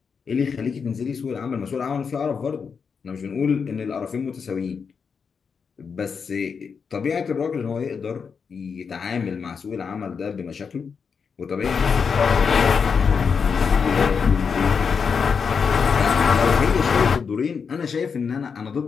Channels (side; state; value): right; quieter; 6.0 dB